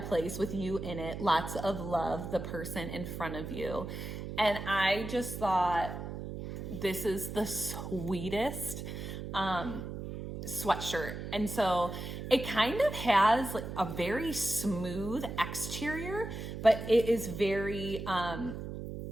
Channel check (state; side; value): noise; right; hum, 7 dB below the sound